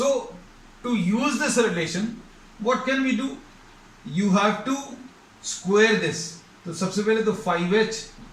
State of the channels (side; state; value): both; identical; correlation 1.00